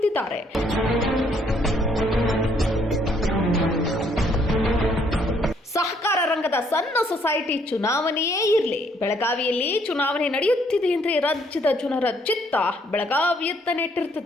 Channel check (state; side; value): normal; both; correlation 0.67